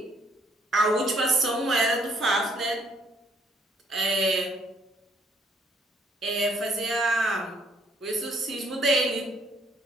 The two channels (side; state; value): both; normal; correlation 0.66